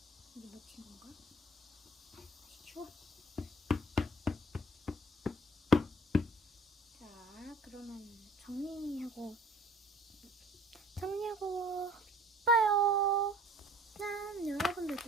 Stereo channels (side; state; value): both; normal; correlation 0.52